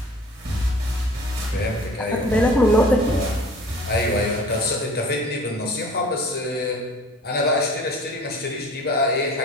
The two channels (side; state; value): both; normal; correlation 0.45